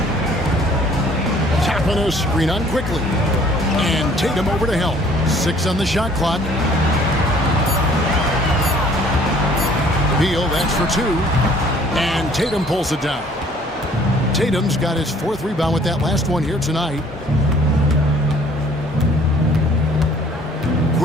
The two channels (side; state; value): both; normal; correlation 0.56